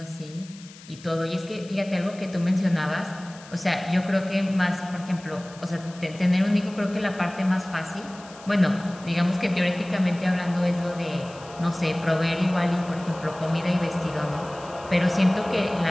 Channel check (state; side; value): noise; left; hiss, 20 dB below the sound